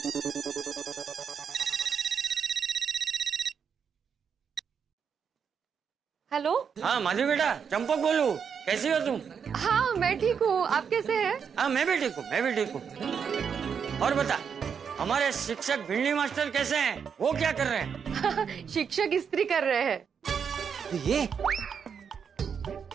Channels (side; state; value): left; quieter; 6.9 dB